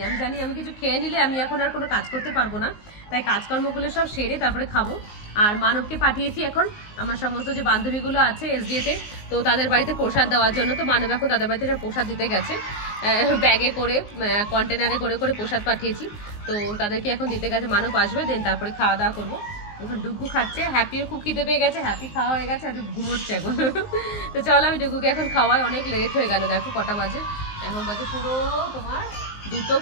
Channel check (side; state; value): right; late; 19 ms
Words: আমি জানি আমি কিছু খেয়ে নিলে আমি এখন আর কোনো কাজ করতে পারবো না, তাই কাজকর্মগুলো সব সেরে তারপরে খাবো। আর মানবকে পাঠিয়েছি এখন আমার সমস্ত যে বান্ধবীগুলো আছে এসডিএতে, তো তাদের বাড়িতে প্রসাদ দেওয়ার জন্য। তো মানব এখন তাদের বাড়িতে প্রসাদ দিতে গেছে, ব্যাগে করে কন্টেনারে করে করে প্রসাদ পাঠিয়েছি, তো তাদেরকে এখন দিতে গেছে। মানব আসবে, দেন তারপরে খাওয়া দাওয়া করবো। এখন ডুগু খাচ্ছে, হ্যাপিও খুব খিদে পেয়ে গেছে, হ্যাপি খাওয়া হয়ে গেছে, হ্যাপি ঘুমোচ্ছে এখন। তো চলো আমি ডুগুকে এখন খাওয়াই, অনেক লেট হয়ে গেল, দেখো কটা বাজে, এখন বাজে পুরো তোমার